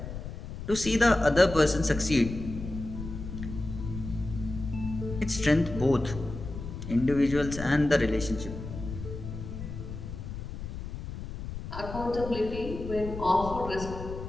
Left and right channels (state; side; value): noise; left; rumble, 8 dB below the sound